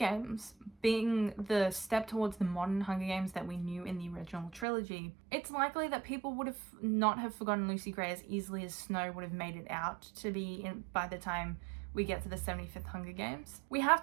being the step towards the modern Hunger Games that we knew in the original trilogy, it's likely that people would have not have forgotten Lucy Gray as easily as Snow would have made it out to be by the time we get to the 75th Hunger Games. We have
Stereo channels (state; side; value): drops out; left; at 4.7 s